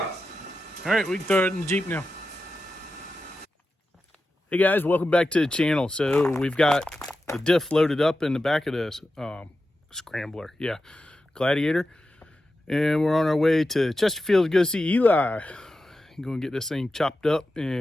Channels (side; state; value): both; normal; correlation 0.91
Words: right, we can throw it in the Jeep now. Hey guys, welcome back to the channel. So we've got the diff loaded up in the back of this scrambler. Yeah, Gladiator. And we're on our way to Chesterfield to go see Eli. I'm going to get this thing chopped up